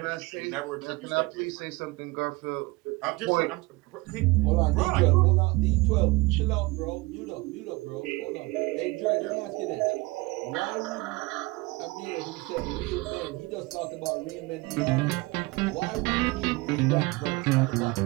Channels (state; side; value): quieter; left; 23.3 dB